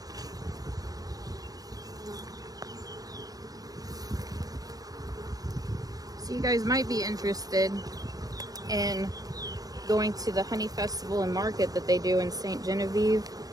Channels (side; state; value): left; late; 0.18 ms